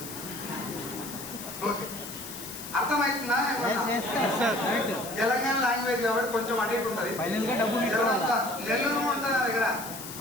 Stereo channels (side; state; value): left; noise; hiss, 11 dB below the sound